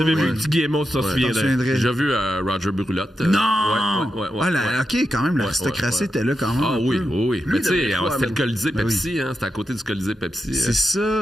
avais vu Tiggy Aymon, tu t'en souviendrais. J'ai vu Roger Brulotte. Non! OK, quand même, l'aristocratie était là quand même. Ah oui. Mais tu sais, c'était le Colisée Pepsi. C'était à côté du Colisée Pepsi. C'est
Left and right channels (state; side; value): normal; both; correlation 0.87